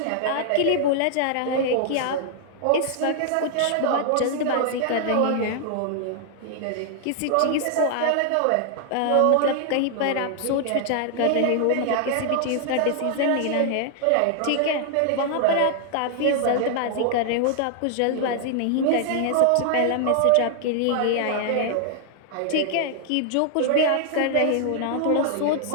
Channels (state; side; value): different; both; correlation -0.01